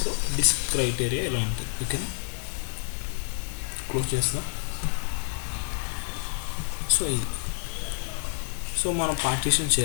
సో డిస్క్ క్రైటీరియా ఇలా ఉంటుంది. ఓకేనా, క్లోజ్ చేస్తున్నాం. సో ఇది, సో మనం పార్టీషన్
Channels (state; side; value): silent; right; 58 dB below the other